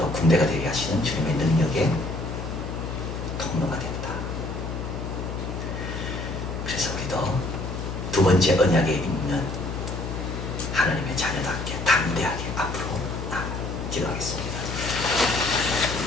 군대가 되게 하시는 주님의 능력에 통로가 된다. 그래서 우리도 두 번째 언약에 있는 하나님의 자녀답게 담대하게 앞으로 기도하겠습니다.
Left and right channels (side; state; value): left; noise; hum, 6 dB below the sound